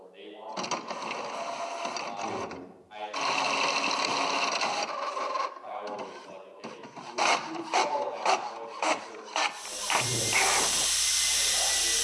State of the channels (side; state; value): both; identical; correlation 1.00